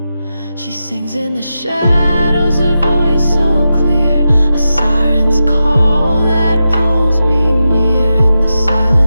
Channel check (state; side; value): inverted; both; correlation -0.90